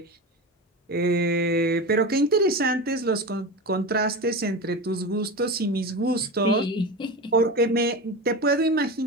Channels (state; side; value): normal; both; correlation 0.24